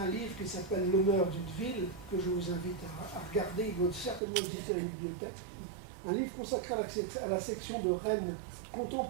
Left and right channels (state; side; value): drops out; left; at 4.2 s